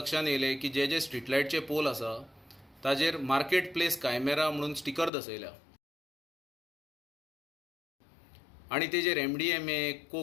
येयलें की जे स्ट्रीट लायटचे पोल आसा ताजेर मार्केट प्लेस कायमेरा म्हणून स्टिकर दसयल्या आनी तेजेर MDMA,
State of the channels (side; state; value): right; drops out; at 5.1 s